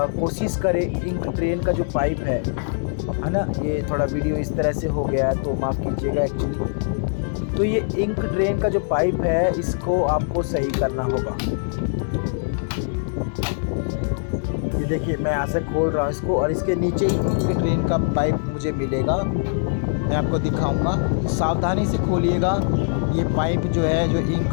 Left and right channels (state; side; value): silent; right; 64 dB below the other